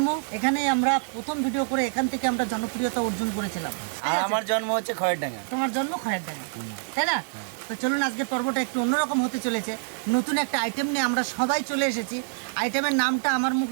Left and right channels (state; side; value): silent; left; digital silence